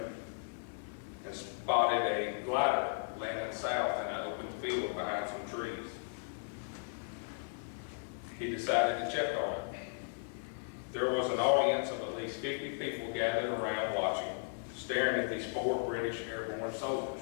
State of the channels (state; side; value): silent; right; digital silence